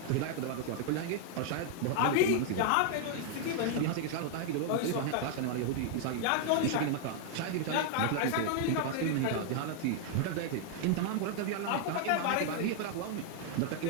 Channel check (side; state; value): both; different; correlation 0.00